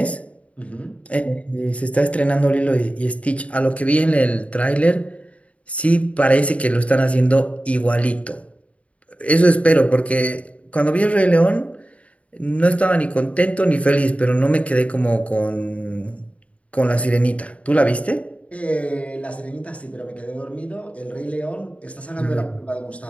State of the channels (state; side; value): late; right; 0.065 ms